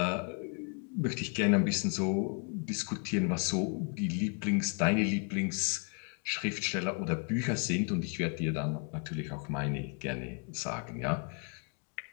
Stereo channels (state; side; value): quieter; right; 38.1 dB